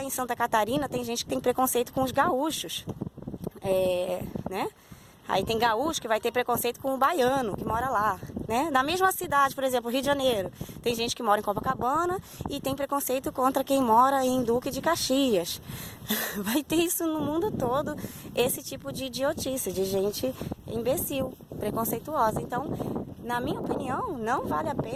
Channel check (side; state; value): both; identical; correlation 1.00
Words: em Santa Catarina tem gente que tem preconceito com os gaúchos. Né? Aí tem gaúcho que vai ter preconceito com o baiano que mora lá, né? Na mesma cidade, por exemplo, Rio de Janeiro, tem gente que mora em Copacabana e tem preconceito contra quem mora em Duque de Caxias. Vai ter isso no mundo todo, esse tipo de idiotice, de gente imbecil, preconceituosa. Então, na minha opinião, não vale a